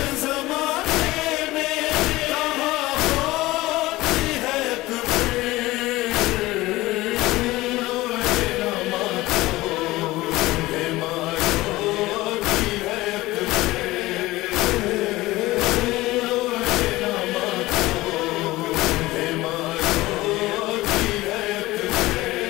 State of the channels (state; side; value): quieter; right; 18.7 dB